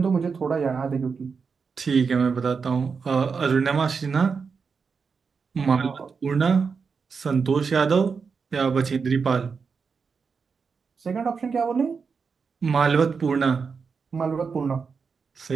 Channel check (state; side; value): quieter; left; 5.4 dB